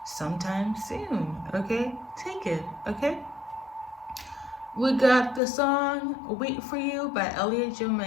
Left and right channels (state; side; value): drops out; right; at 5.4 s